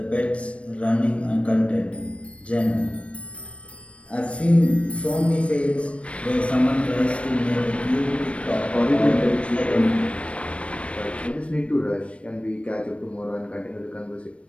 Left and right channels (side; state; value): right; late; 0.062 ms